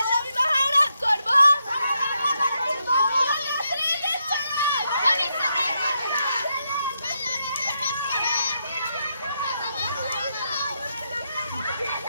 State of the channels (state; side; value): inverted; both; correlation -0.81